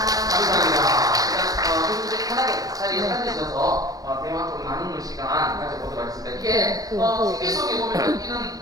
교수님 편하게 자리에 앉으셔서 대화 좀 나누는 시간 가져보도록 하겠습니다. 이게 TV 속에 보면 이런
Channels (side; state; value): left; late; 0.18 ms